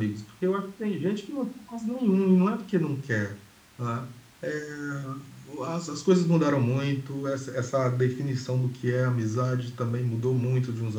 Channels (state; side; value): identical; both; correlation 1.00